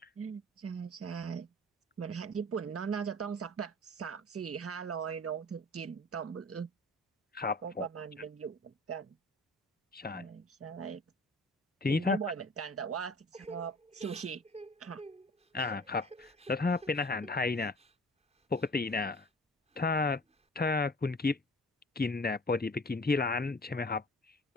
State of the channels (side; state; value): both; normal; correlation 0.45